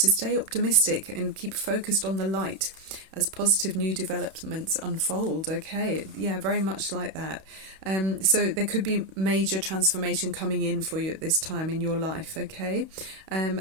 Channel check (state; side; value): late; left; 31 ms